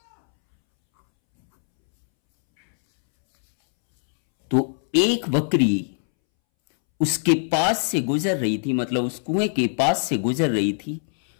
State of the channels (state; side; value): silent; right; 64 dB below the other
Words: तो एक बकरी उसके पास से गुजर रही थी, मतलब उस कुएं के पास से गुजर रही थी,